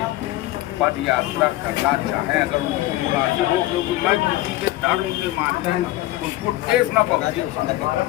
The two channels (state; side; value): quieter; right; 16.7 dB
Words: पद यात्रा करना चाहें, अगर उनको मुनासिब हो, क्योंकि मैं किसी के धर्म के मानने उसको ठेस न पहुंचे,